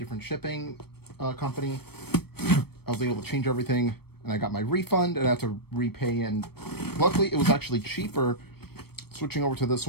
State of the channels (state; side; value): late; right; 0.96 ms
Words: shipping company. I was able to change everything, and I got my refund, and I had to repay. And luckily, it was actually cheaper switching over to this